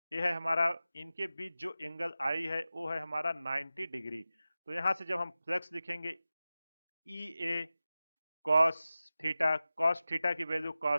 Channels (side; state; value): both; inverted; correlation -0.95